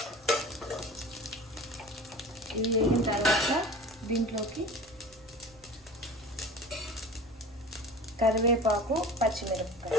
ఇవి వేగిన తర్వాత దీంట్లోకి కరివేపాకు,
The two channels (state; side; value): normal; both; correlation 0.38